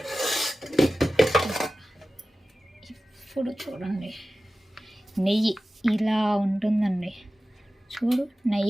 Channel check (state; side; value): normal; both; correlation 0.95